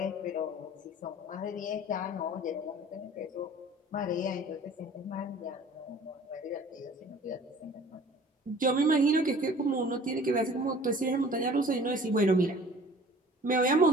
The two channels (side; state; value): both; normal; correlation 0.48